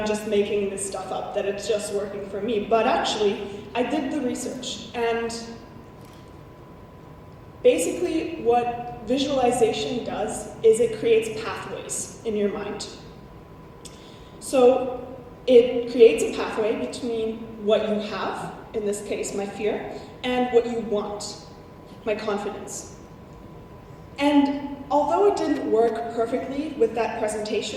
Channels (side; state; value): both; identical; correlation 1.00